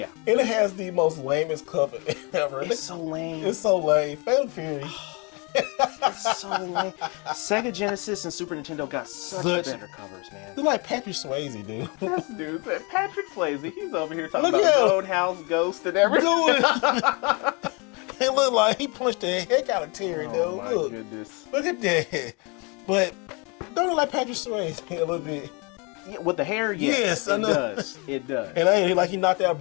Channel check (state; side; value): quieter; right; 30.5 dB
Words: And it has the most lamest cover ever. It's so lame. It's so lame. Fatal Fury. It's so lame. Sega Genesis and Super Nintendo got such better covers, man. They're like Patrick Swayze, dude. This dude, Patrick Swayze, he's over here talking Look about at him. Roadhouse Ghost and everything. It looked like he punched the heck out of Terry, dude. Oh my Look. goodness. Look at that. But don't look like Patrick Swayze a little bit. Yeah, with the hair, Yes, I it know. does. It does. And I like he knocked out